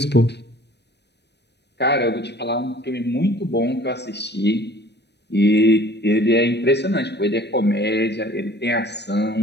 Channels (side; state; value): right; late; 0.49 ms